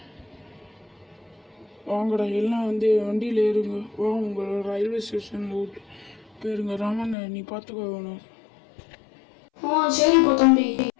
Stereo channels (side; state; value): right; drops out; at 7.2 s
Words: வாங்கடா எல்லாம் வந்து வண்டியில் ஏறுங்க. வா உங்கள் ரயில்வே ஸ்டேஷனில் விட்டு போயிருங்க. ராமன் நீ பார்த்துக்கோ வேணும். சரிப்பா தம்பி.